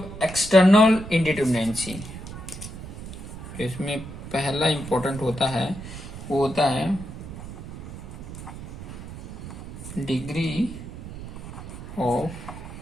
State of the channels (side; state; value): right; noise; rumble, 11 dB below the sound